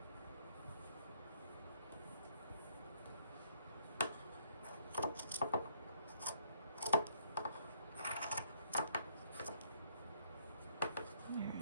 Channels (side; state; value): both; inverted; correlation -0.67